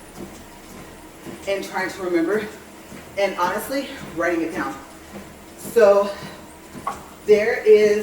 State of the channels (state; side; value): identical; both; correlation 1.00